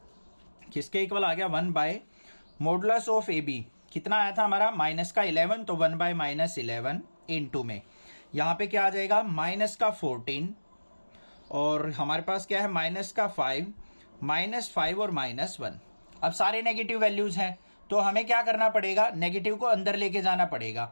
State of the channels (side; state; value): both; inverted; correlation -1.00